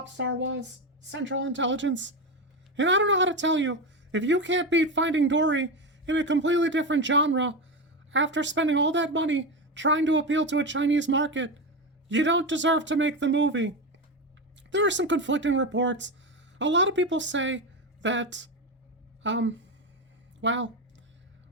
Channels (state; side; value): normal; both; correlation 0.16